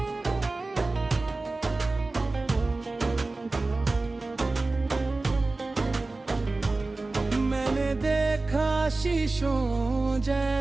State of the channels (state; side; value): quieter; left; 3.3 dB